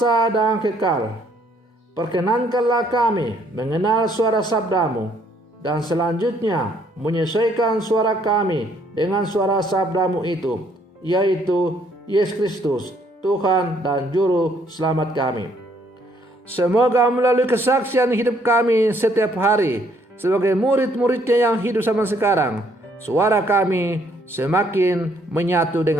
dan Kekal, perkenankanlah kami mengenal suara sabdamu dan selanjutnya menyesuaikan suara kami dengan suara sabdamu itu, yaitu Yesus Kristus, Tuhan dan Juru Selamat kami. Semoga melalui kesaksian hidup kami setiap hari sebagai murid-muridnya yang hidup zaman sekarang, suara kami semakin menyatu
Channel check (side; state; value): both; normal; correlation 0.67